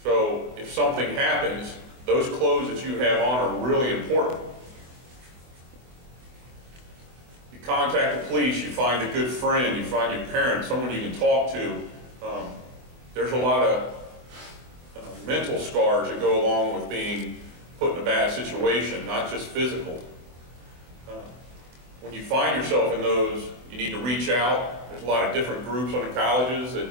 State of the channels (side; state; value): left; late; 24 ms